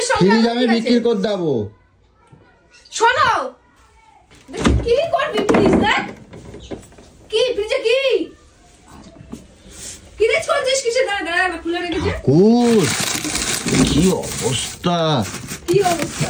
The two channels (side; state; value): both; identical; correlation 1.00